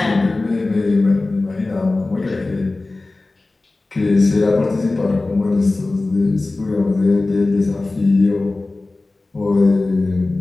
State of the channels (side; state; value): right; quieter; 3.2 dB